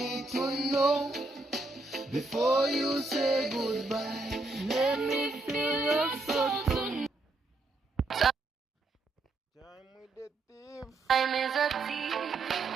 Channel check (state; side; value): quieter; left; 3.1 dB